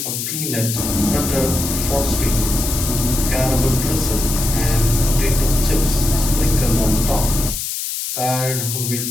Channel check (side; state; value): left; noise; hiss, 4 dB below the sound